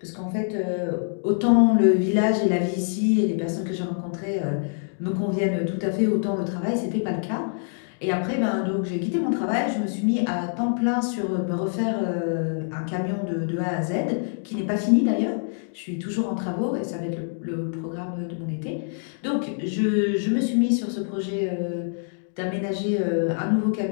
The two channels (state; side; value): silent; right; digital silence